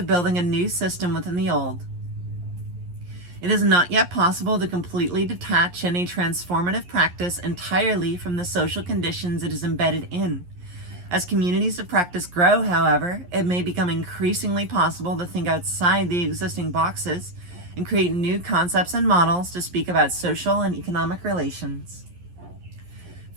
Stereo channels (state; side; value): late; left; 11 ms